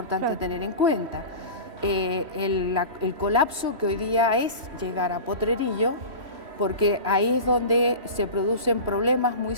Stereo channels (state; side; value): late; left; 3.1 ms